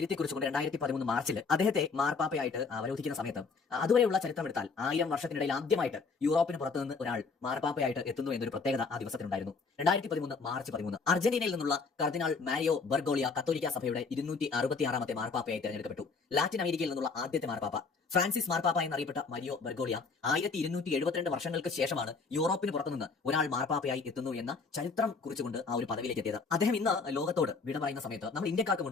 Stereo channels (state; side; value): quieter; right; 4.6 dB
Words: കുറിച്ചുകൊണ്ട് 2013 മാർച്ചിൽ അദ്ദേഹത്തെ മാർപ്പാപ്പയായിട്ട് അവരോധിക്കുന്ന സമയത്ത് അതുവരെയുള്ള ചരിത്രം എടുത്താൽ 1000 വർഷത്തിനിടയിൽ ആദ്യമായിട്ട് യൂറോപ്പിന് പുറത്തുനിന്ന് ഒരാൾ മാർപ്പാപ്പയായിട്ട് എത്തുന്നു എന്നൊരു പ്രത്യേകത ആ ദിവസത്തിനുണ്ടായിരുന്നു. 2013 മാർച്ച് 13 അർജന്റീനയിൽ നിന്നുള്ള കർദിനാൾ മാരിയോ ബർഗോളിയ കത്തോലിക്ക സഭയുടെ 266ാമത്തെ മാർപ്പാപ്പയായി തെരഞ്ഞെടുക്കപ്പെട്ടു. ലാറ്റിൻ അമേരിക്കയിൽ നിന്നുള്ള ആദ്യത്തെ മാർപ്പാപ്പ ഫ്രാൻസിസ് മാർപ്പാപ്പ എന്നറിയപ്പെട്ട മരിയോ ബർഗോളിയ 1272 വർഷങ്ങൾക്ക് ശേഷമാണ് യൂറോപ്പിന് പുറത്തുനിന്ന് ഒരാൾ മാർപ്പാപ്പയായി എത്തുന്നു എന്ന ചരിത്രം കുറിച്ചുകൊണ്ട് ആ ഒരു പദവിയിലേക്ക് എത്തിയത്. അദ്ദേഹം ഇന്ന് ലോകത്തോട് വിട പറയുന്ന സമയത്ത് നമ്മൾ ഇന്ത്യക്കാർക്ക്